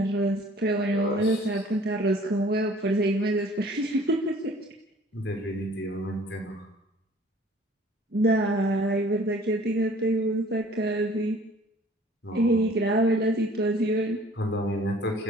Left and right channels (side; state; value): both; normal; correlation 0.52